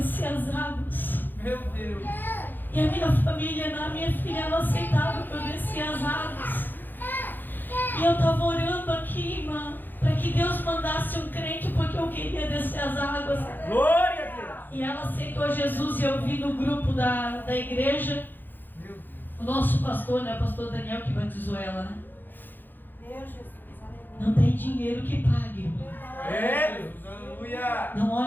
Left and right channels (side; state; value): right; late; 0.090 ms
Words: as águas. Meu Deus. E a minha família, a minha filha, não aceitava que eu descia as águas. E eu estava orando aqui, irmã, para que Deus mandasse um crente, porque eu queria descer as águas. Glória a Deus! E ela aceitou Jesus e eu vi no grupo da igreja, Meu Deus. o nosso pastor, né, o pastor Daniel que batizou ela, né? Deus, Jesus. Não tem dinheiro que pague, irmão. É, Deus. Aleluia. Não